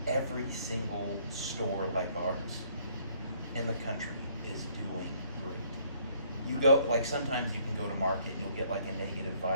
every single store like ours in the country is doing great. You go, like sometimes you can go to market and you'll get like a negative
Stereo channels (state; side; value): inverted; both; correlation -0.64